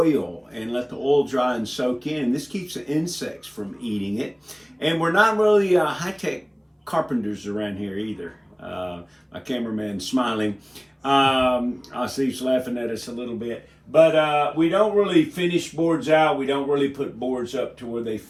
and let the oil dry and soak in. This keeps the insects from eating it. And we're not really high-tech carpenters around here either. My cameraman's smiling. I see he's laughing at us a little bit. But we don't really finish boards out. We don't really put boards up to where they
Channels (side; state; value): both; identical; correlation 1.00